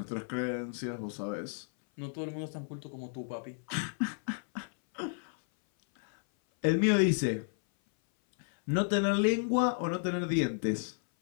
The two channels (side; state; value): right; silent; 56 dB below the other